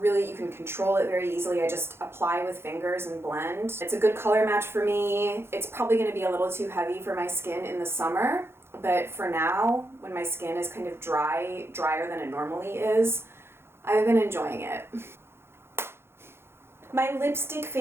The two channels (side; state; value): left; late; 0.12 ms